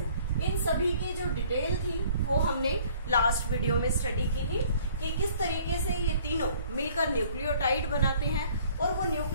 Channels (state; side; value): inverted; both; correlation -0.56